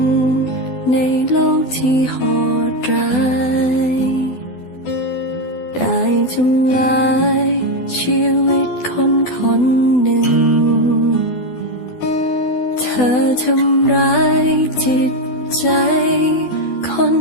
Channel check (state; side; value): late; right; 12 ms